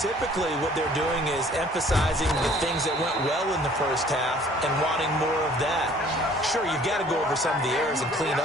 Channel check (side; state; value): both; normal; correlation 0.55